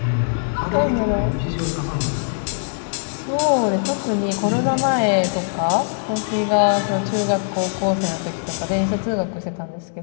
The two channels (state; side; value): silent; right; 65 dB below the other